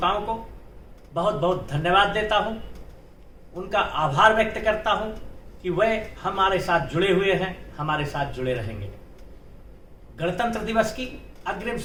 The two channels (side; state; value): both; identical; correlation 1.00